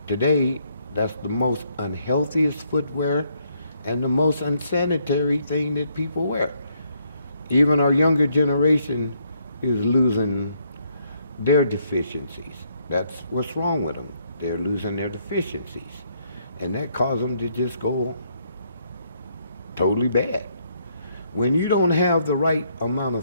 Today, that's the most unhealthiest footwear and the most unsanitary thing that people wear. Even our younger generation is losing their deficiencies. That's what's wrong with them. They're losing their deficiencies. And that causes them to just go totally bad. When you don't have the right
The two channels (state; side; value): inverted; both; correlation -0.72